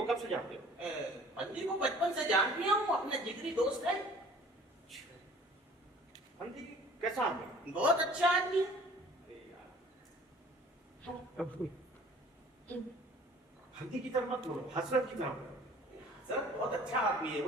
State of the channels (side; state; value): both; normal; correlation 0.50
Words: कब से जानते हो? फंदी को बचपन से जानती हूँ, अपना जिगरी दोस्त है। फंदी कैसा आदमी? बहुत अच्छा आदमी है। अरे यार, फंदी की तरफ मत बोलो, हसरत की तरफ बोलो। सर बहुत अच्छा आदमी है,